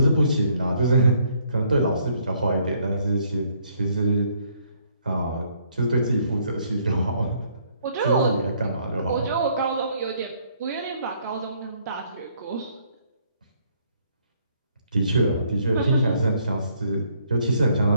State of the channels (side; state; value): both; inverted; correlation -0.67